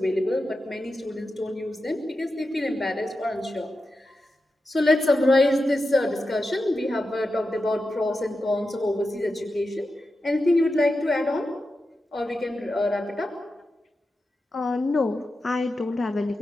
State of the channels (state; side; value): normal; both; correlation 0.90